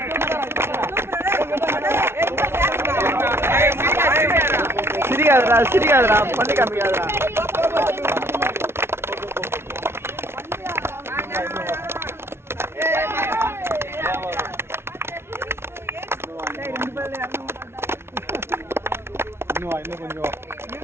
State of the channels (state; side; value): late; left; 0.12 ms